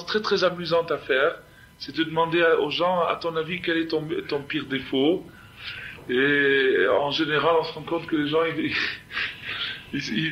très très amusante à faire, c'est de demander aux gens, à ton avis, quel est ton pire défaut? Et en général, on se rend compte que les gens, ils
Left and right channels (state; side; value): identical; both; correlation 1.00